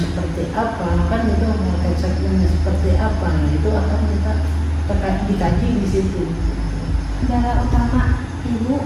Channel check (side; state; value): both; identical; correlation 1.00